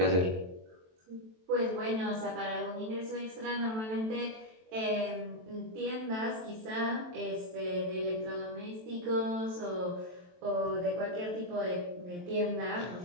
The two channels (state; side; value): late; left; 23 ms